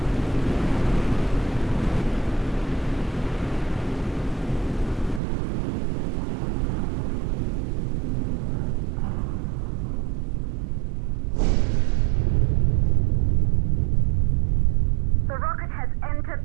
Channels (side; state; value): left; drops out; at 5.2 s